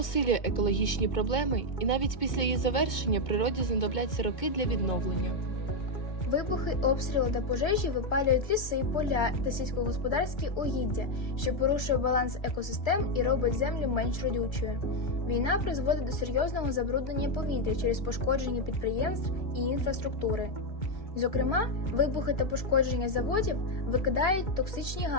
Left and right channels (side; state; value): right; late; 2.3 ms